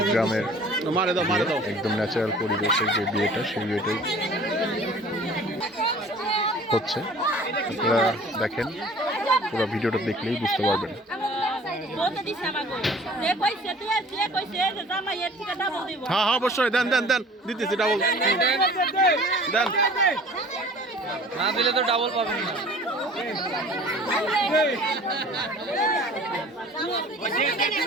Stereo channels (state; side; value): normal; both; correlation 0.47